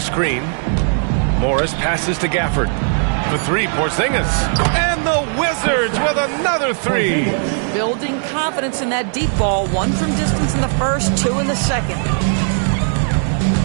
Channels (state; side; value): silent; left; 56 dB below the other